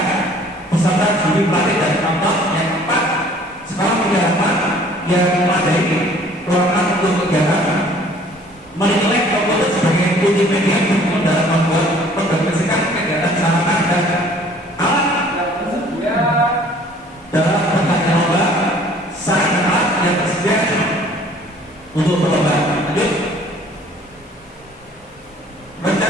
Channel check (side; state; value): both; normal; correlation 0.54